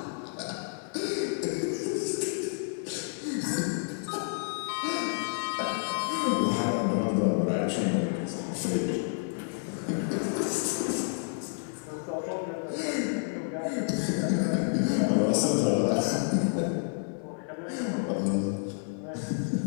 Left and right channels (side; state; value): right; silent; 58 dB below the other